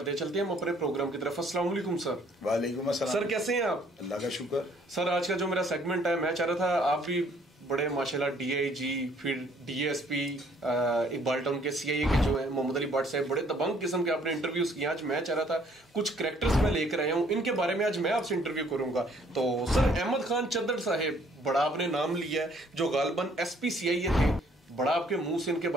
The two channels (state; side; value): normal; both; correlation 0.62